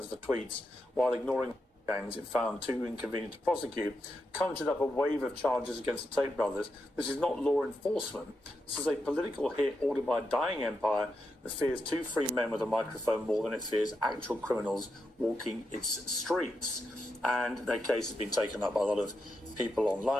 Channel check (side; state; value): both; normal; correlation 0.85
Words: for tweets while ignoring gangs it found too inconvenient to prosecute, conjured up a wave of charges against the Tate brothers. This is not law enforcement. This is a political hit ordered by a dying empire that fears two free men with a microphone more than it fears actual criminals walking its streets. And their case has been taken up by a lot of people